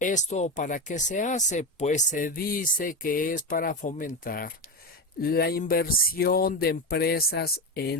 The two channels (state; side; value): normal; both; correlation 0.17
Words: ¿Para qué se hace? Pues se dice que es para fomentar la inversión de empresas